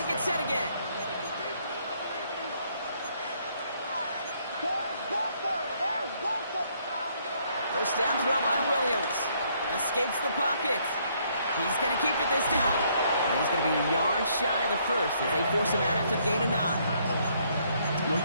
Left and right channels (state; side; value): inverted; both; correlation -0.68